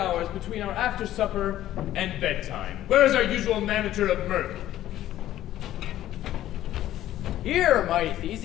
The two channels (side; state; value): right; quieter; 13.3 dB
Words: between our after supper and bedtime? Where is our usual manager of mirth? Here, mighty